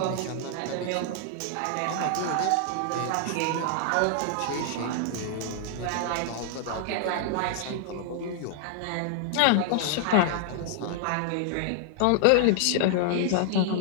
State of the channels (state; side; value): different; both; correlation 0.00